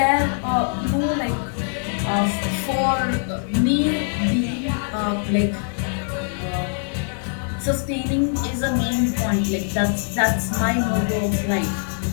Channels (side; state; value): right; silent; 64 dB below the other